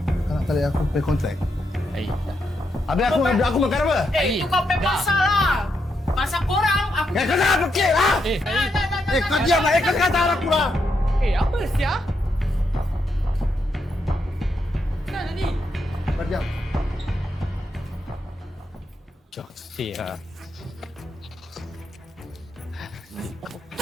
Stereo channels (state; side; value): normal; both; correlation 0.81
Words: Kau nak tarik aku pay kontrak? Habis aku makan apa? Itu kau pay pasal lah. Pasal korang, aku... Kau jangan fikir lah! Kau diam lah! Kau kata aku lah! Apa sia? Kenapa tadi? Kau diam. Joksi lah.